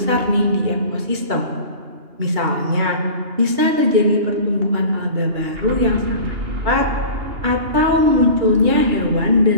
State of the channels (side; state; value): left; late; 2.8 ms